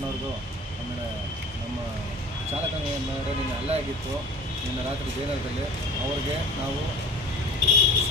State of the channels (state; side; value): normal; both; correlation 0.40